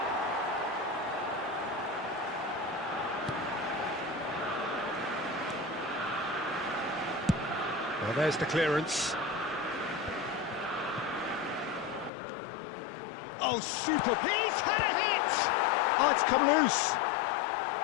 Well, there's the clearance. Oh, super! He's had a hit! Oh, it's come loose.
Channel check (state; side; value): drops out; right; at 12.1 s